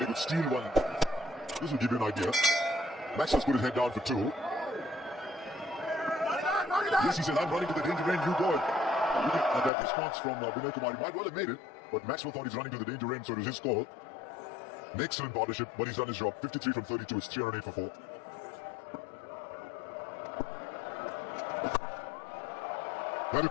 he could steal one. This will give you an idea. Maxwell's put his head down for 2. Yes, he said, I'm running to the danger end, you go. That response from Vinay Kumar, he might well have made it, but Maxwell thought he's running to the danger end, so it was his call. An excellent partnership, but he's done his job. 53 from 32, it's 308 for 4. That'll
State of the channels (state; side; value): drops out; right; at 9.7 s